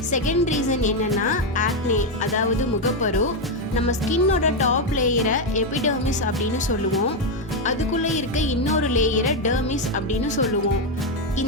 செகண்ட் ரீசன் என்னன்னா ஆக்னே, அதாவது முகப்பரு. நம்ம ஸ்கின்னோட டாப் லேயரை எபிடர்மிஸ் அப்படின்னு சொல்லுவோம். அதுக்குள்ளே இருக்க இன்னொரு லேயரை டெர்மிஸ் அப்படின்னு சொல்லுவோம்.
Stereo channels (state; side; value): normal; both; correlation 0.05